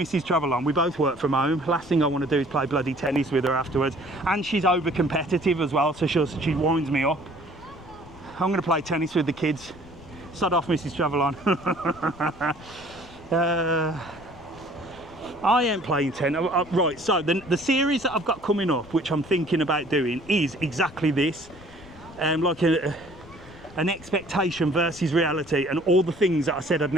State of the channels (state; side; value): noise; left; rumble, 20 dB below the sound